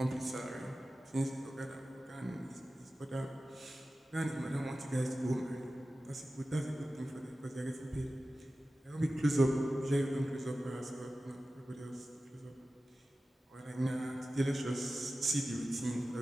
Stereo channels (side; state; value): both; normal; correlation 0.95